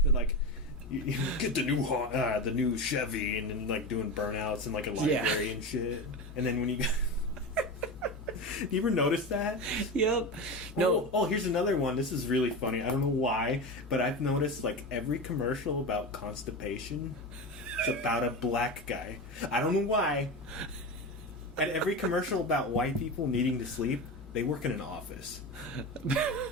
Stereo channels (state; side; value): normal; both; correlation 0.23